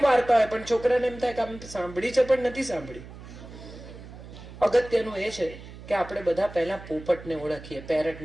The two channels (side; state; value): right; noise; hum, 15 dB below the sound